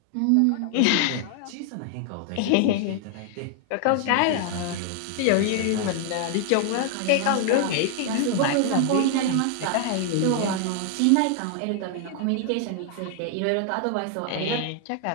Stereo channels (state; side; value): different; both; correlation 0.00